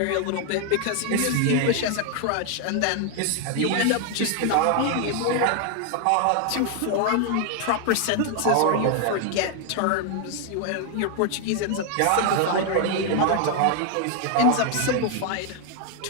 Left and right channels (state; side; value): different; both; correlation 0.01